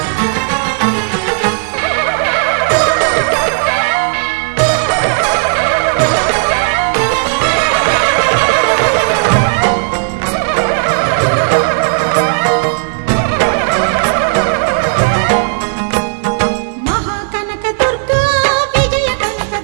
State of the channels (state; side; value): silent; left; digital silence